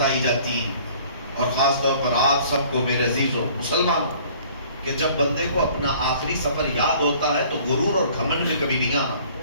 جاتی ہیں، اور خاص طور پر آپ سب کو میرے عزیزوں مسلمانوں، کہ جب بندے کو اپنا آخری سفر یاد ہوتا ہے تو غرور اور گھمنڈ میں کبھی نہیں آنا۔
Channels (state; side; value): inverted; both; correlation -0.54